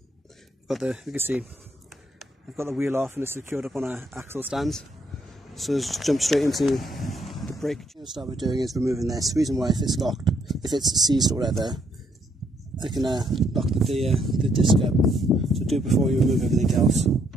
You can see, I've got the wheel off and it's secured up on our axle stands. So let's just jump straight into the brake. What I'll start with doing is removing this. The reason why, if it's locked, if it's seized or whatever, I can lock the disc up. So do it before you remove everything else.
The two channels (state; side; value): normal; both; correlation 0.71